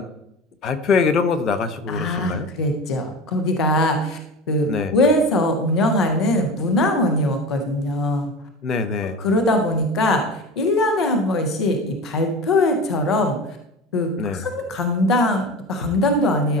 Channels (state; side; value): normal; both; correlation 0.31